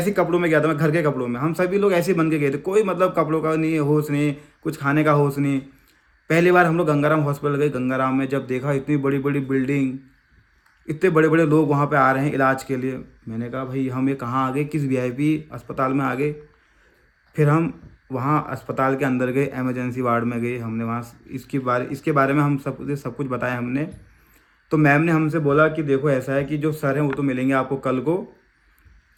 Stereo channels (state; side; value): identical; both; correlation 1.00